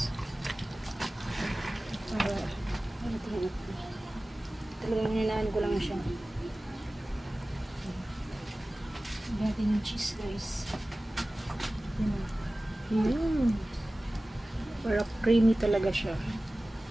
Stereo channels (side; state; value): both; normal; correlation 0.97